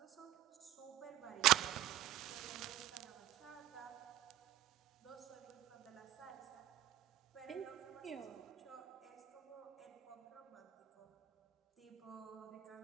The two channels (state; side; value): quieter; left; 13.3 dB